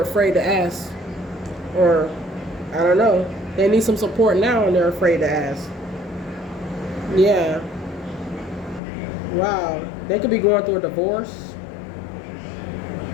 afraid to ask. Or, I don't know. They need some support now, and they're afraid to ask. Yeah. Wow. They could be going through a divorce.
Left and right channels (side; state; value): right; drops out; at 8.8 s